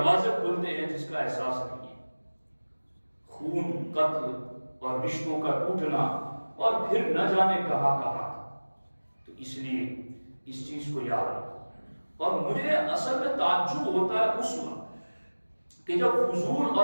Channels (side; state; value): both; inverted; correlation -1.00